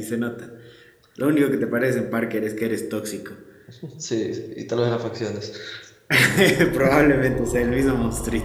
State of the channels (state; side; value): identical; both; correlation 1.00